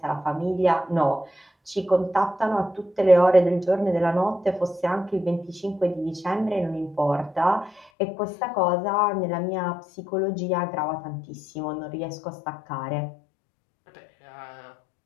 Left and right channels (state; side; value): drops out; right; at 7.9 s